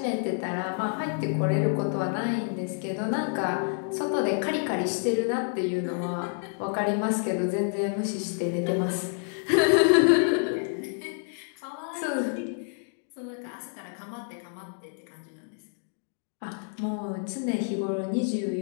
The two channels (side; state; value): right; silent; 59 dB below the other